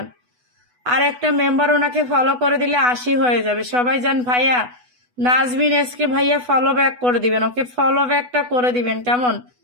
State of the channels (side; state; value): left; late; 8.1 ms